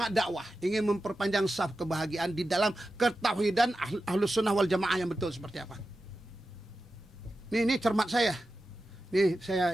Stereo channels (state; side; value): normal; both; correlation 0.92